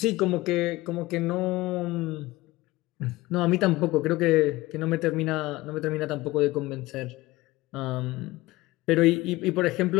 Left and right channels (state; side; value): quieter; right; 19.4 dB